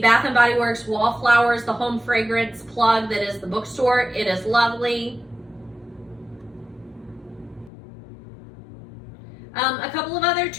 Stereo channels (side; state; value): right; drops out; at 7.7 s